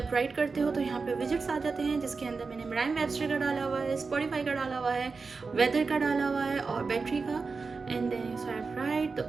राइट करते हो तो यहाँ पे विजिट्स आ जाते हैं जिसके अंदर मैंने मराइम वेबस्टर का डाला हुआ है, स्पॉटिफाई का डाला हुआ है, वेदर का डाला हुआ है और बैटरी का. एंड देन स्वाइप राइट तो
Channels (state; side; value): quieter; left; 4.5 dB